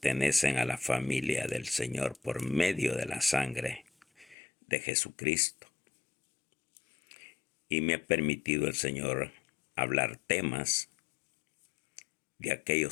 a la familia del Señor por medio de la sangre de Jesucristo. Y me ha permitido el Señor hablar temas de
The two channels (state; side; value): drops out; right; at 4.4 s